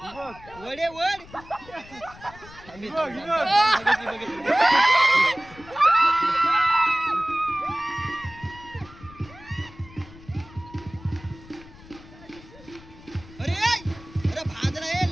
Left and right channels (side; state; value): left; noise; rumble, 20 dB below the sound